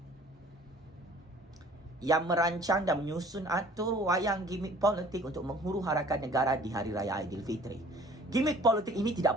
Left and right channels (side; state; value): both; normal; correlation 0.52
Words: yang merancang dan menyusun atur wayang gimmick politik untuk menghuru-harakan negara di Hari Raya Aidilfitri. Gimmick politik ini tidak